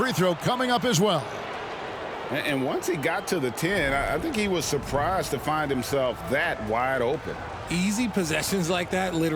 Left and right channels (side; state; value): both; identical; correlation 1.00